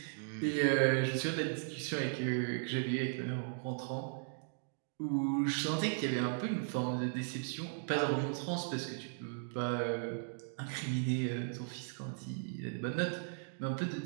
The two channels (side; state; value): left; silent; digital silence